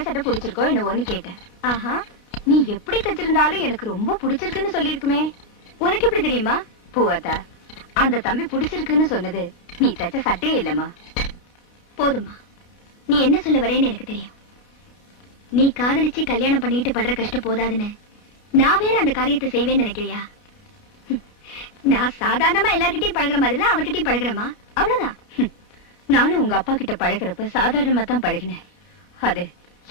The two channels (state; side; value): late; right; 29 ms